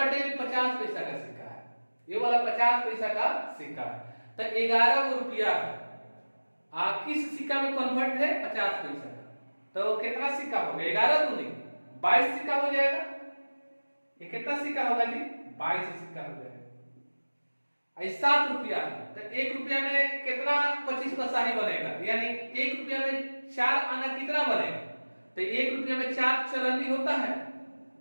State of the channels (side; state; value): both; inverted; correlation -1.00